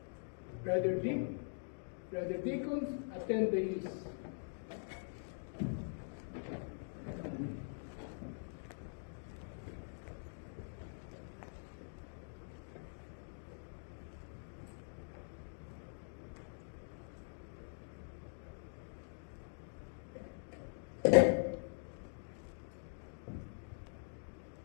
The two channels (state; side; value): silent; right; digital silence